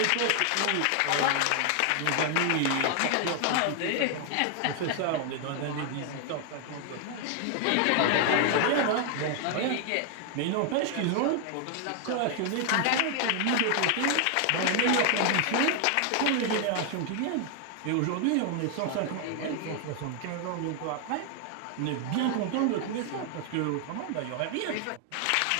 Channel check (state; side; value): different; both; correlation 0.00